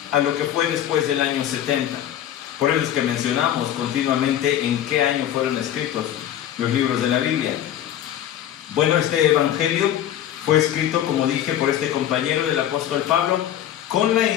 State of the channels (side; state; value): right; quieter; 11.3 dB